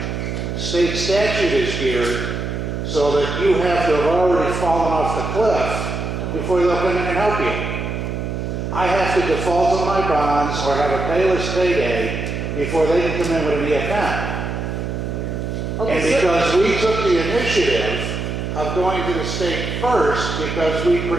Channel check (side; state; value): right; noise; hum, 4 dB below the sound